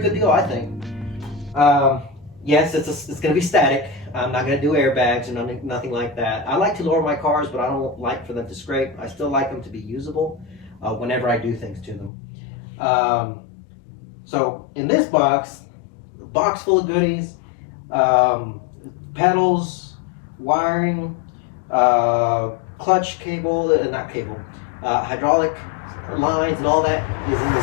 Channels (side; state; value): right; drops out; at 12.1 s